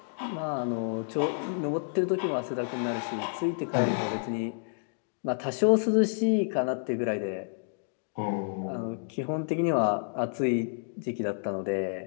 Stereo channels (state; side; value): silent; right; digital silence